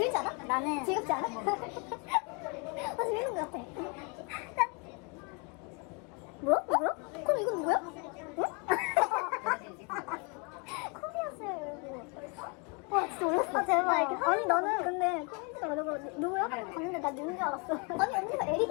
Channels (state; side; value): quieter; right; 33.4 dB